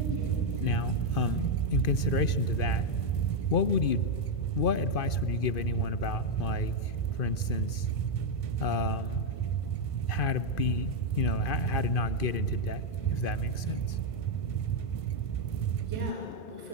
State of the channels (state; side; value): late; right; 2.5 ms